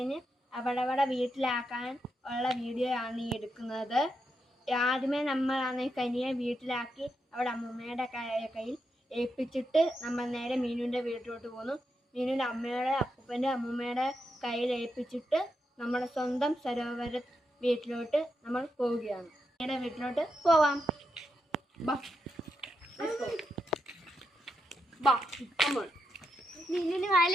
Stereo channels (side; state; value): both; normal; correlation 0.84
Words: അവിടെ വീട്ടിലാക്കാൻ ഉള്ള വീഡിയോ ആണ് ഈ എടുക്കുന്നത്. ആദ്യമേ നമ്മളാണെങ്കിൽ കനിയെ വീട്ടിലാക്കി അവിടെ അമ്മൂമ്മയുടെ കയ്യിൽ ഏൽപ്പിച്ചിട്ട് നമ്മൾ നേരെ മീനുവിൻ്റെ വീട്ടിലോട്ട് പോന്നു. മീനുവിൻ്റെ അമ്മയുടെ അപ്പൂപ്പൻ്റെ അമ്മൂമ്മയുടെ കയ്യിൽ ഏൽപ്പിച്ചിട്ട് നമ്മുടെ സ്വന്തം സരോവര വീട്ടിലോട്ട് നമ്മൾ പോവുകയാണ്. അമ്മയുടെ വീട്ടിലോട്ട് പോവാം. നിന്നിന് വാല